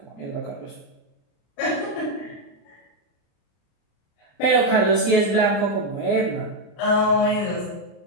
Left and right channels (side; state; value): right; late; 35 ms